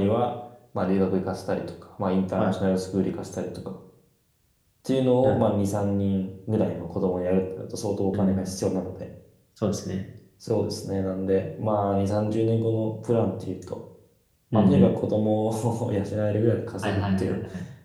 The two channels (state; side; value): identical; both; correlation 1.00